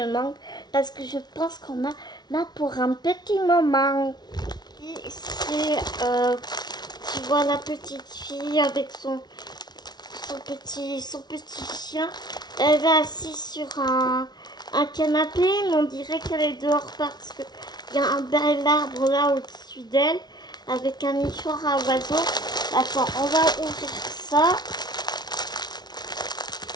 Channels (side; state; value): right; late; 0.20 ms